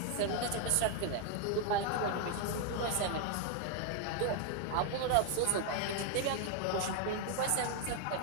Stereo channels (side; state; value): both; different; correlation 0.00